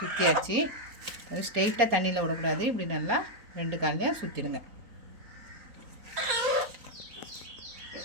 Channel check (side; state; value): left; late; 3.9 ms